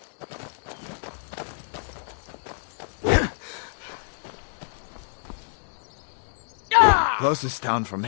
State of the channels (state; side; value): silent; right; digital silence